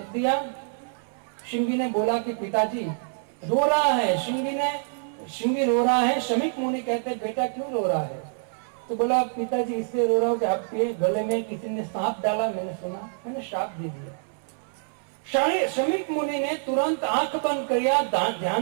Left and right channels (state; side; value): silent; left; 61 dB below the other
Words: दिया। श्रृंगी ने बोला कि पिताजी रो रहा है। श्रृंगी रो रहा है। शमीक मुनि कहते बेटा क्यों रो रहा है? तो बोला पिताजी इसलिए रो रहा हूं कि आपके गले में किसी ने सांप डाला, मैंने सुना, मैंने श्राप दे दिया। शमीक मुनि ने तुरंत आंख बंद किया, ध्यान